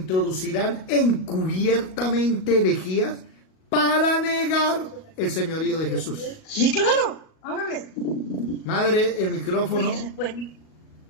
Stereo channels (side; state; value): right; late; 38 ms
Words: encubiertamente herejías para negar el señorío de Jesús. sí, claro, háblale. Madre, el micrófono.